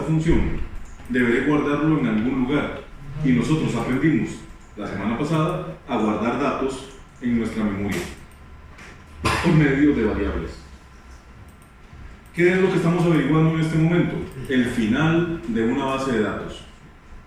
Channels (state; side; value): identical; both; correlation 1.00